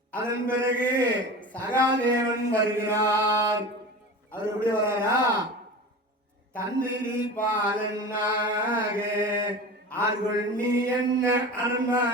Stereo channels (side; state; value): both; normal; correlation 0.32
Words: அதன் பிறகு சகாதேவன் வருகிறார். அவர் எப்படி வராரா, தந்திரி பாலனாக ஆர்கொள் நீ என்ன